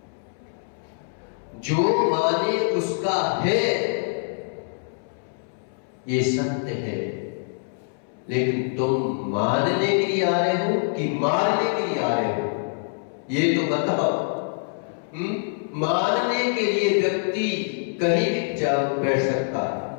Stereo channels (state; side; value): silent; right; 62 dB below the other